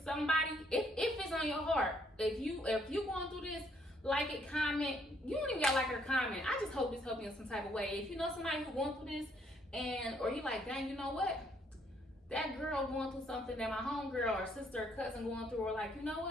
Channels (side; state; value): both; normal; correlation 0.68